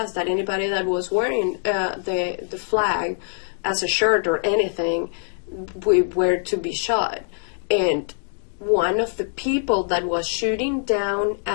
that anybody that was wearing the flag as a shirt or anything, we were to be shot. And one of the people that was shooting down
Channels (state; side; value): silent; right; 63 dB below the other